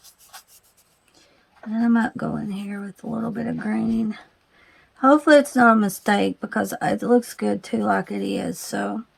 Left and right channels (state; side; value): identical; both; correlation 1.00